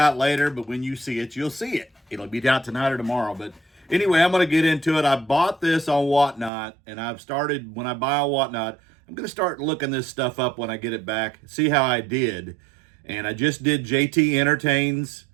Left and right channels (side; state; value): left; drops out; at 6.5 s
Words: later, but when you see it, you'll see it. It'll be out tonight or tomorrow. But anyway, I'm going to get into it. I bought this on Whatnot, and I've started, when I buy on Whatnot, I'm going to start looking this stuff up when I get it back, see how I did. And I just did JT Entertains.